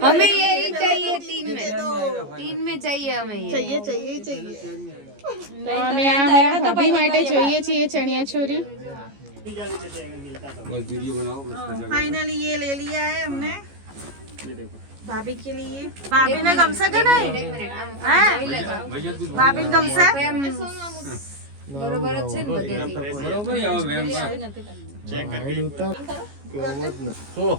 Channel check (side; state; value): left; late; 14 ms